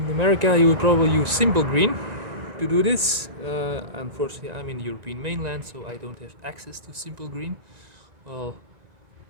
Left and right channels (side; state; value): left; late; 2.0 ms